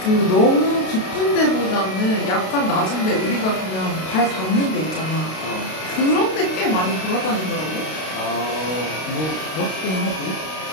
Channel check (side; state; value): right; late; 32 ms